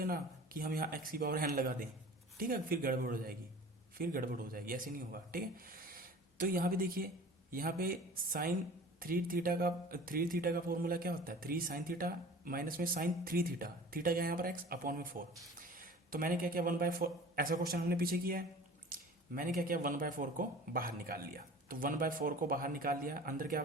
कि हम यहाँ x की पावर n लगा दें, ठीक है, फिर गड़बड़ हो जाएगी, ऐसे नहीं होगा, ठीक है। तो यहाँ पे देखिए, यहाँ पे साइन 3 थीटा का फॉर्मूला क्या होता है 3 साइन थीटा माइनस में साइन 3 थीटा, थीटा क्या है यहाँ पर x अपॉन में 4। तो मैंने क्या किया 1/4, ऐसा क्वेश्चन हमने पीछे किया है, मैंने क्या किया 1/4 को बाहर निकाल लिया, तो 1/4 को बाहर निकाल लिया, अंदर क्या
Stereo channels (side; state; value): both; normal; correlation 0.42